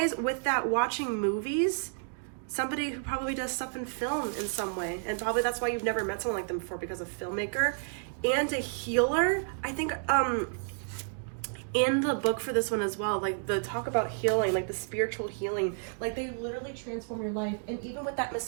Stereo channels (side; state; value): left; silent; digital silence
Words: with that, watching movies, somebody who probably does stuff in film in some way, and probably that's why you've never met someone like them before, because a filmmaker. And a healer. I think in the book for this one as well, like the talk about healing, like the spiritual healing, like they literally transform your life. And even with that